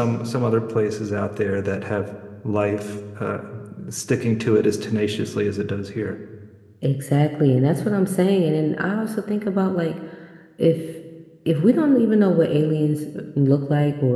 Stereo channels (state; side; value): identical; both; correlation 1.00